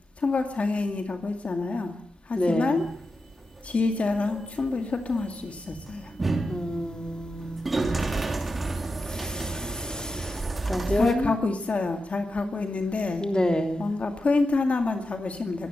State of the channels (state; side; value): normal; both; correlation 0.89